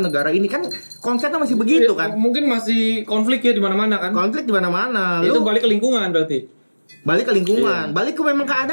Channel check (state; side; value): inverted; both; correlation -1.00